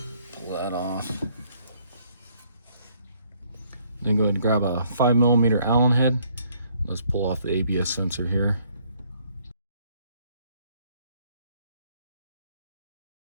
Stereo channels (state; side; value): inverted; both; correlation -0.66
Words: that off. Then go ahead and grab a 5mm Allen head. Let's pull off the ABS sensor here.